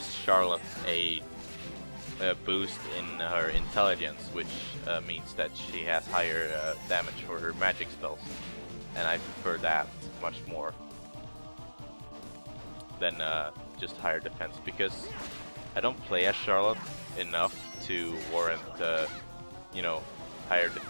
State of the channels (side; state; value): both; inverted; correlation -1.00